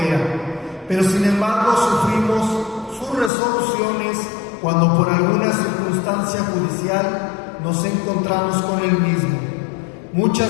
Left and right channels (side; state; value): right; drops out; at 3.3 s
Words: pero sin embargo sufrimos sus resoluciones cuando por alguna circunstancia judicial nos encontramos con el mismo.